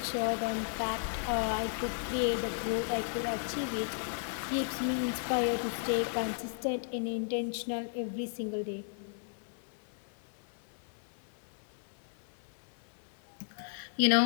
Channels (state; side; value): silent; right; 54 dB below the other